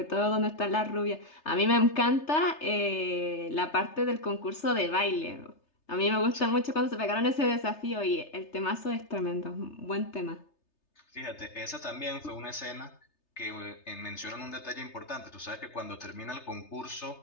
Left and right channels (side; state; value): right; late; 3.3 ms